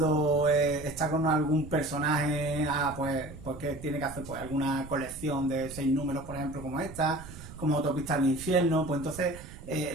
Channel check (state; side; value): noise; right; rumble, 15 dB below the sound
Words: está con algún personaje, pues que tiene que hacer pues alguna colección de 6 números, por ejemplo, como esta, como Autopista al Infierno. Pues entonces